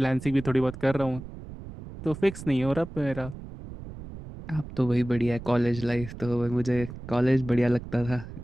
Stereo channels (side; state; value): right; noise; rumble, 13 dB below the sound